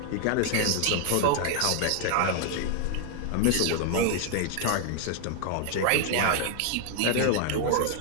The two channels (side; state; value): both; different; correlation 0.00